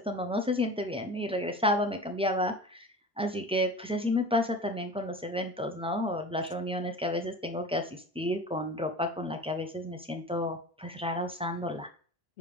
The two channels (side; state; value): both; normal; correlation 0.35